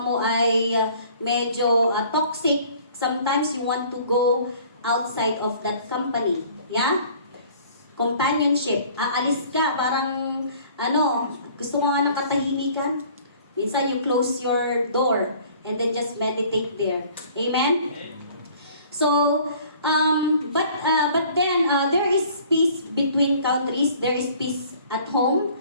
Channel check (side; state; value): both; inverted; correlation -0.52